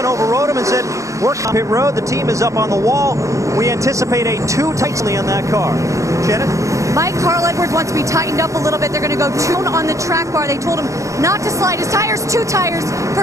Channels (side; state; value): left; late; 0.15 ms